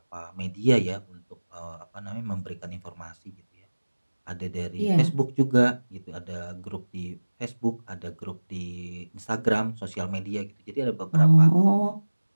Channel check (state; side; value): inverted; both; correlation -1.00